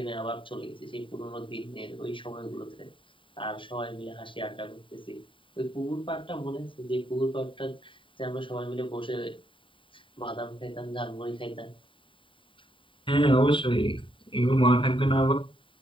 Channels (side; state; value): right; late; 0.25 ms